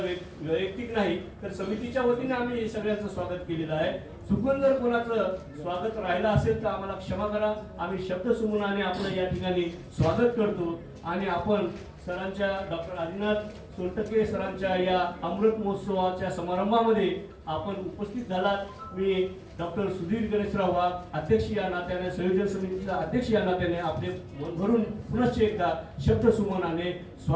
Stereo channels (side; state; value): both; identical; correlation 1.00